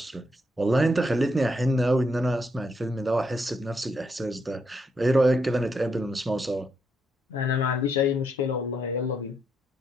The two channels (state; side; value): normal; both; correlation 0.78